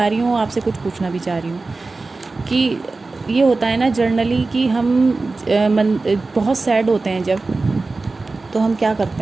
रही हूँ, आपसे कुछ पूछना भी चाह रही हूँ कि ये होता है ना जनरली कि हम बहुत सैड होते हैं जब, तो हम क्या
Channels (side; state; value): left; quieter; 3.6 dB